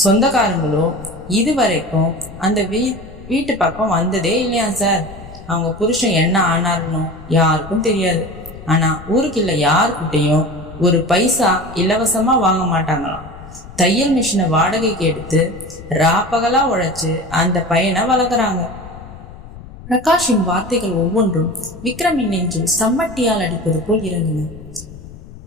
சொந்தக்காரங்களோ இதுவரைக்கும் அந்த வீட்டு பக்கம் வந்ததே இல்லையா சார். அவங்க புருஷன் என்ன ஆனார்னோ யாருக்கும் தெரியாது. ஆனா ஊருக்குள்ள யாருக்கிட்டையும் ஒரு பைசா இலவசமா வாங்க மாட்டாங்களாம். தையல் மிஷினை வாடகைக்கு எடுத்து ராப்பகலா உழைச்சு அந்த பையனை வளர்க்குறாங்க. பிரகாஷின் வார்த்தைகள் ஒவ்வொன்றும் விக்ரமின் நெஞ்சில் சம்மட்டியால் அடிப்பது போல் இறங்கின.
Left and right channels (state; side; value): noise; left; rumble, 16 dB below the sound